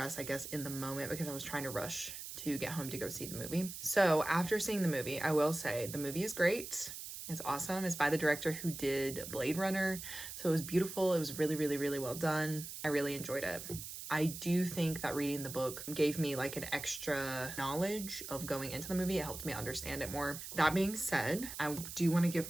I guess, in the moment, because I was trying to rush to get home to go see the movie. So after seeing the movie, I will say the movie is great. It's awesome. It's by the director who did Blade Runner. So it was beautiful. It was really, really, really well done. I really enjoyed it. I do think that reading the book gave me like an extra knowledge of going into the movie. It helped me understand it more. That being said, I do want to give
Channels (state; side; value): noise; right; hiss, 9 dB below the sound